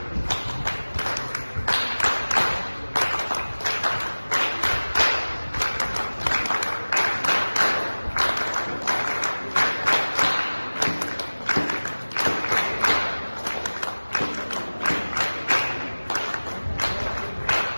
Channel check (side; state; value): both; inverted; correlation -1.00